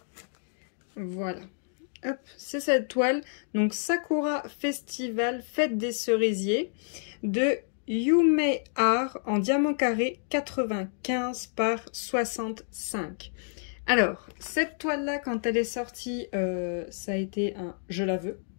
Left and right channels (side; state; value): right; silent; digital silence